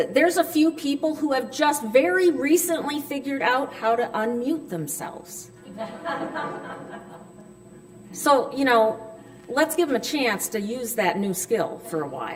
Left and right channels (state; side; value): identical; both; correlation 1.00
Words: there's a few people who have just very recently figured out how to unmute themselves. So, let's give them a chance to use that new skill for a